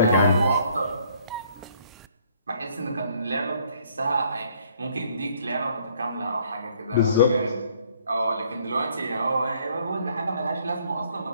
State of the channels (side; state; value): both; inverted; correlation -0.63